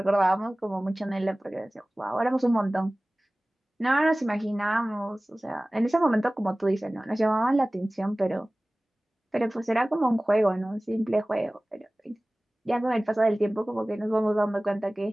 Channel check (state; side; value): normal; both; correlation 0.98